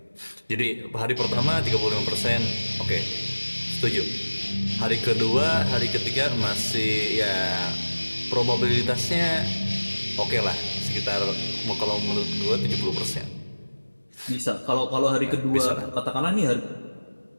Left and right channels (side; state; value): both; inverted; correlation -1.00